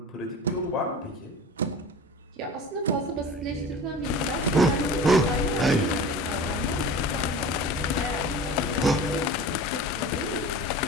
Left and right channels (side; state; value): both; normal; correlation 0.37